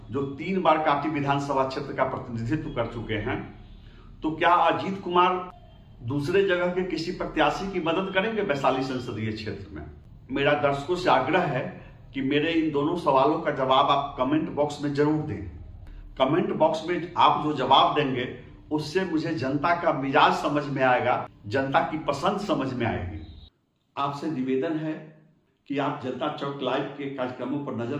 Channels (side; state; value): both; identical; correlation 1.00